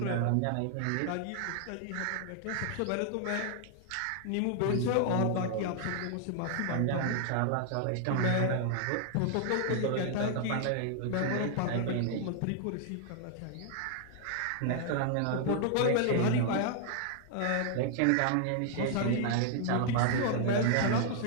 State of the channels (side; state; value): both; different; correlation 0.00